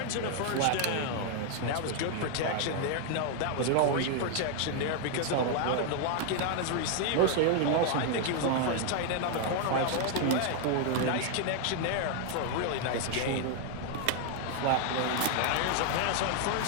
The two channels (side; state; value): both; different; correlation 0.00